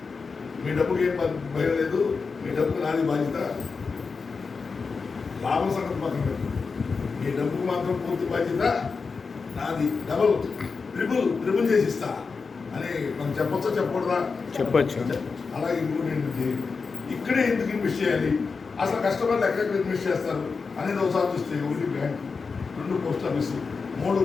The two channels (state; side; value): quieter; right; 4.8 dB